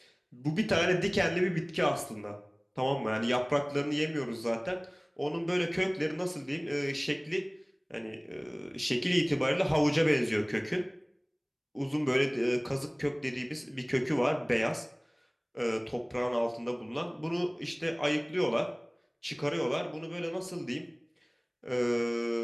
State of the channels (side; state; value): both; identical; correlation 1.00